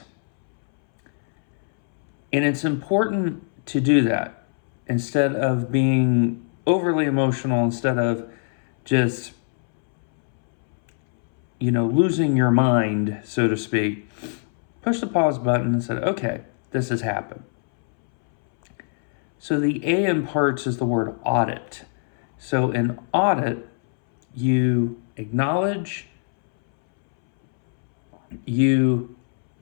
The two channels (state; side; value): silent; right; 64 dB below the other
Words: And it's important to do that instead of being overly emotional, instead of just, losing your mind, so to speak. Push the pause button and said, okay, this has happened. So the A in parts is the word audit. So in audit, you acknowledge, you